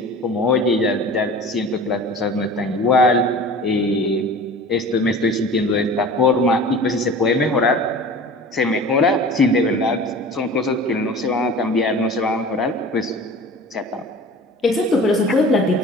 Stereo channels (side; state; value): both; normal; correlation 0.40